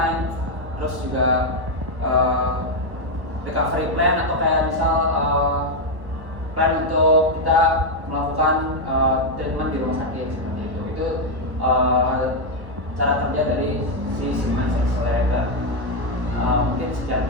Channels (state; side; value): late; left; 1.3 ms